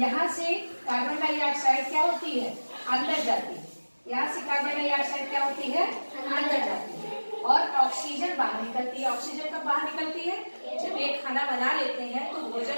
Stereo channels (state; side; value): inverted; both; correlation -1.00